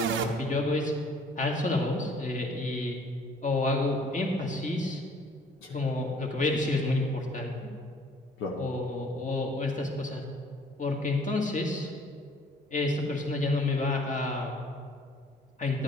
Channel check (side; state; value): both; normal; correlation 0.56